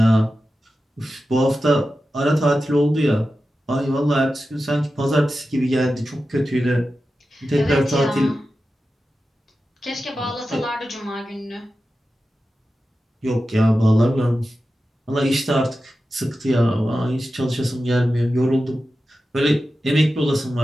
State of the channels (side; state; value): both; normal; correlation 0.92